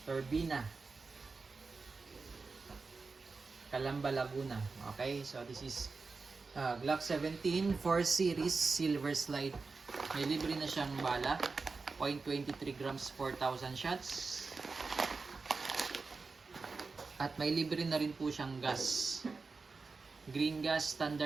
Turbina, Calamba, Laguna. Okay, so this is Glock 17 4 Series Silver Slide. May libre na siyang bala, 0.23 grams, 4,000 shots. At may libre na rin po siyang gas. Green gas,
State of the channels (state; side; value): quieter; left; 4.3 dB